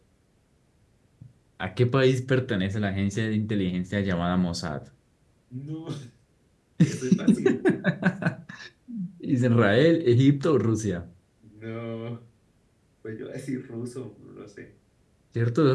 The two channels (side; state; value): both; identical; correlation 1.00